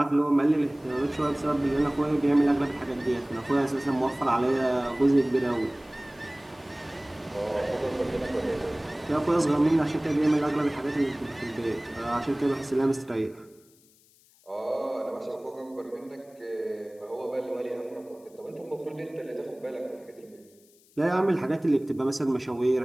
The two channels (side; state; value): left; noise; hiss, 30 dB below the sound